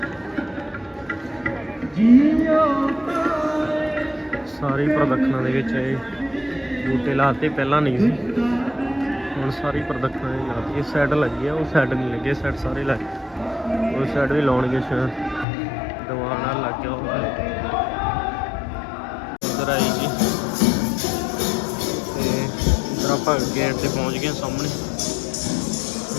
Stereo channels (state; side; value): drops out; right; at 15.5 s